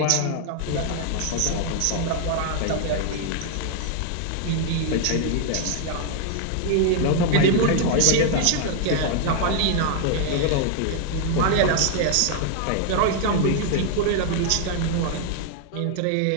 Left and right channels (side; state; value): both; different; correlation 0.00